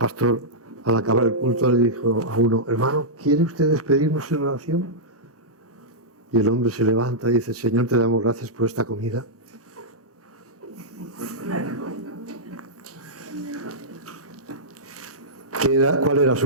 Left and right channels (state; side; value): normal; both; correlation -0.11